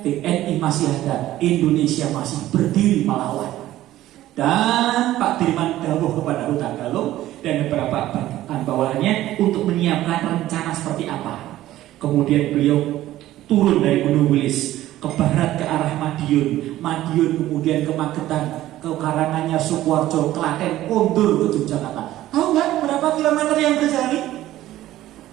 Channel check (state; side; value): quieter; left; 14.5 dB